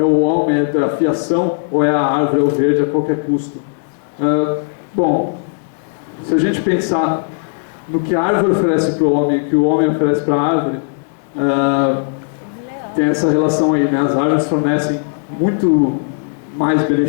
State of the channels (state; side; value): silent; right; 68 dB below the other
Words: o homem, é a fiação, ou é a árvore, é o verde a qualquer custo. Bom, se a gente pensar no que a árvore oferece para o homem e o que o homem oferece para a árvore, tem essa relação aí, né? As árvores fornecem muito mais